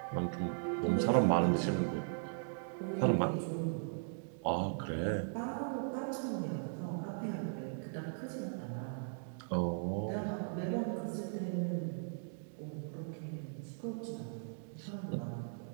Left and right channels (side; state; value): left; silent; digital silence